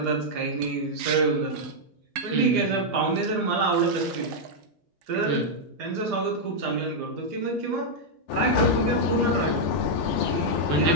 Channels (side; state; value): both; normal; correlation -0.03